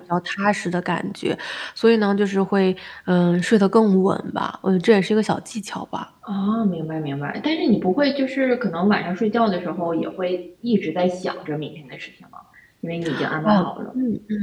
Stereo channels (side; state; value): both; identical; correlation 1.00